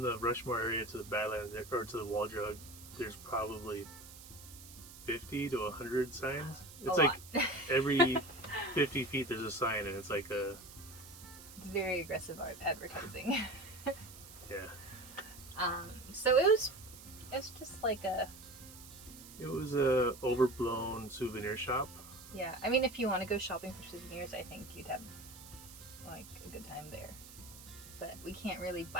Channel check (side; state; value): right; noise; hiss, 16 dB below the sound